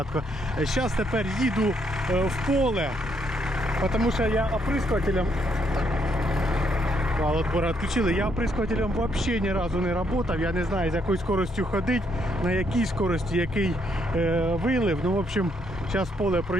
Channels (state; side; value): normal; both; correlation 0.73